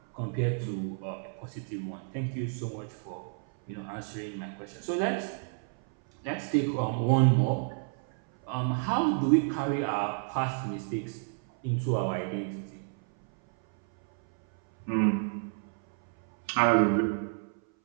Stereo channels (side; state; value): left; silent; 57 dB below the other